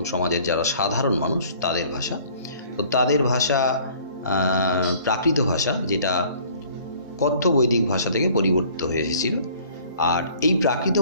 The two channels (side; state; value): both; inverted; correlation -0.54